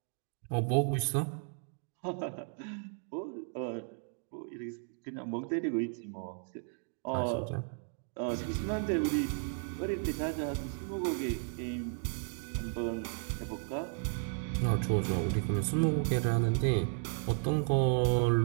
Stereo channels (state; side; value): silent; left; 55 dB below the other